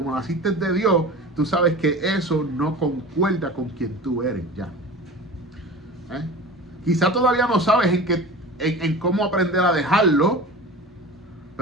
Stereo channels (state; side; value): normal; both; correlation 0.35